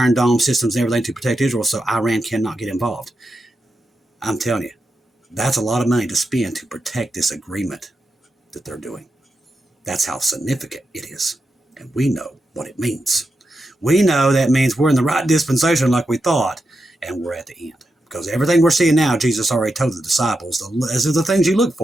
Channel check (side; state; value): both; normal; correlation 0.87